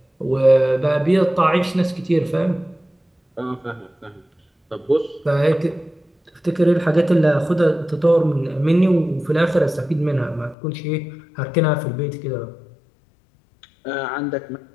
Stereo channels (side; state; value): right; drops out; at 10.6 s